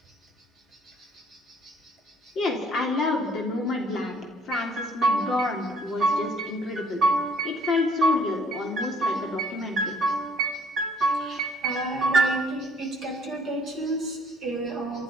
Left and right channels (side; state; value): both; normal; correlation 0.60